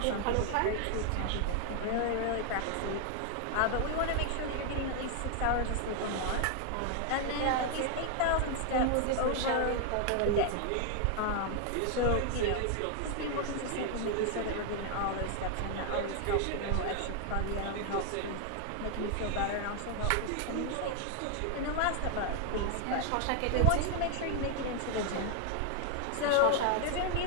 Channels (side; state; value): both; different; correlation 0.00